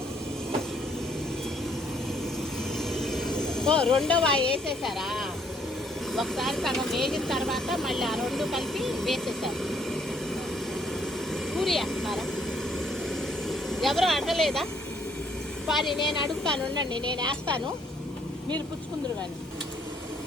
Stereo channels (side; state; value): both; normal; correlation 0.67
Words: రెండో వాయి వేసేసారా? ఒకసారి సగం వేగిన తర్వాత మళ్ళీ ఆ రెండు కలిపి వేసేసారు. పూరి వేస్తున్నారా? ఎవరో అడగలేదా? కానీ నేను అడుగుతాను, ఉండండి, నేను వేస్తాను, మీరు పుచ్చుకుందరు. కానీ